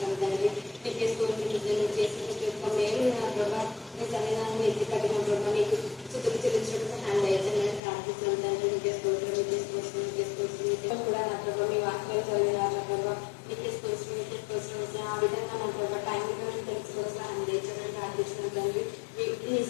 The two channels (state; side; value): drops out; right; at 7.8 s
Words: తండ్రి. నీకే స్తోత్రం నువ్వు చేసిన ప్రతి ఒక్క మేలు నా ప్రభా నీ సన్నిధానం ఎత్తి కట్టిన ప్రభా నీకు స్థుతులు చెల్లించడం సహాయం దయచేయమని ప్రార్థిస్తాను తండ్రి. నీకే స్తోత్రం నీకే స్తోత్రం నీకే స్తోత్రం నీకే కూడా నా ప్రభా మీ వాక్యాలు చదివినారు నా ప్రభా నీకే స్తోత్రం నీకే స్తోత్రం ఆ విధంగా నా ప్రభా టైం తెలుసుకోవడం సహాయం దయచేయమని ప్రార్థిస్తున్నాను తండ్రి. ఈ